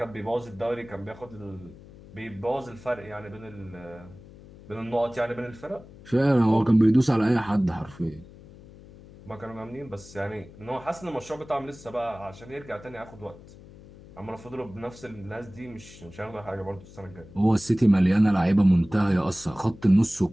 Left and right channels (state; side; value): noise; left; hum, 20 dB below the sound